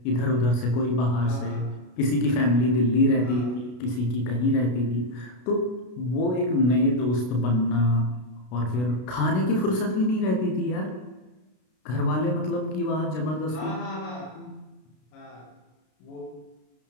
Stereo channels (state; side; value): late; right; 33 ms